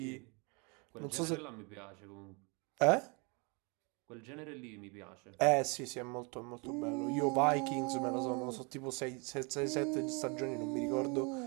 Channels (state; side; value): quieter; left; 31.9 dB